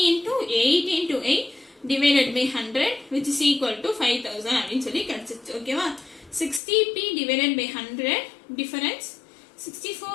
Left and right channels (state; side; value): drops out; right; at 6.6 s